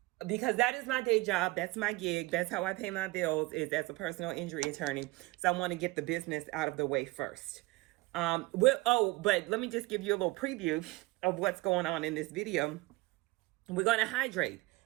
because that is my day job. That's my gig. That's how I pay my bills, is as a personal injury attorney. So I want to get the business out of the way first. But let me just give you a little preview of what's going on in this video. We're going to hydrate.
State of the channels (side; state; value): left; quieter; 21.7 dB